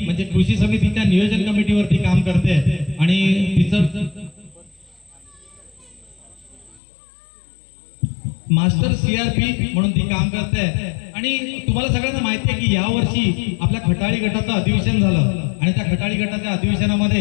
म्हणजे कृषी समितीच्या नियोजन कमिटीवरती काम करते आणि तिचं मास्टर सीआरपी म्हणून ती काम करते। आणि तुम्हाला सगळ्यांना माहिती आहे की यावर्षी आपल्या खटाळी गटाचं अधिवेशन झालं आणि त्या खटाळी गटाच्या अधिवेशनामध्ये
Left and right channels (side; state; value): right; drops out; at 6.8 s